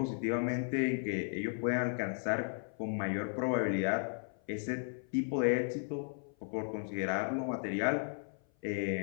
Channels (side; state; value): right; silent; 54 dB below the other